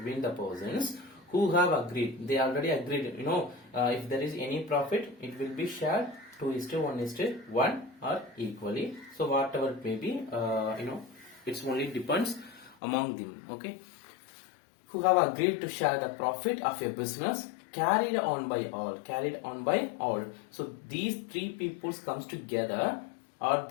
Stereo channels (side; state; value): right; drops out; at 12.8 s